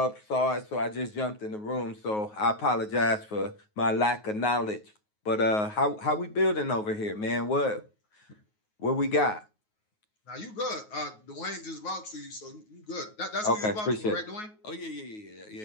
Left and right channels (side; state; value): right; late; 9.4 ms